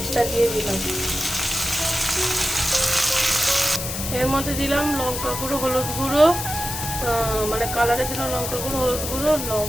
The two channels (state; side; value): noise; left; hiss, 5 dB below the sound